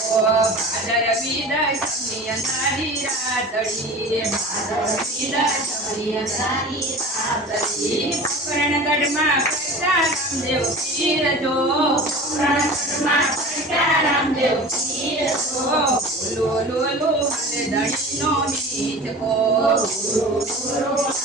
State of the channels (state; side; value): normal; both; correlation 0.37